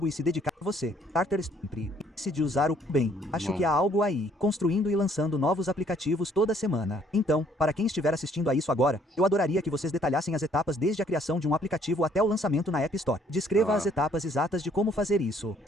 e se dedicar a você. Carter sempre de usar o bem. Acho que há algo aí, construindo e lançando novos aplicativos toda semana. Então, para quem estiver assistindo a isso agora, eu adoraria que vocês detalhassem as etapas desde a criação de um aplicativo até o lançamento na App Store. Descreva as etapas exatas de como fazer isso.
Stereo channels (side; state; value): both; normal; correlation 0.63